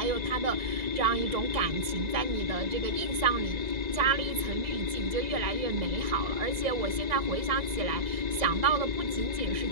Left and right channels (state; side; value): late; left; 1.9 ms